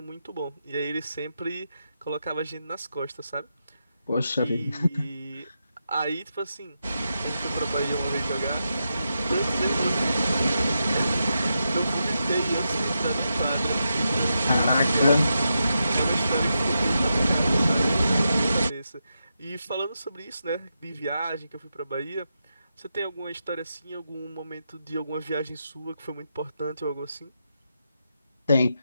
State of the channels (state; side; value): inverted; both; correlation -0.86